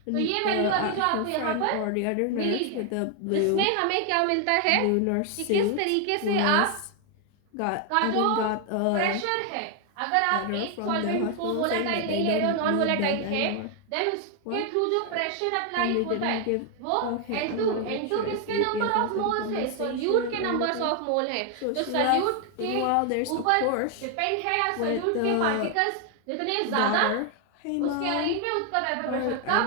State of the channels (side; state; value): both; different; correlation 0.01